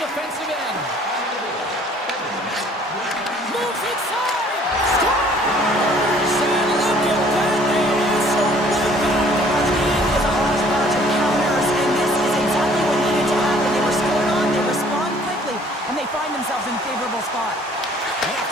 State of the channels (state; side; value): normal; both; correlation 0.56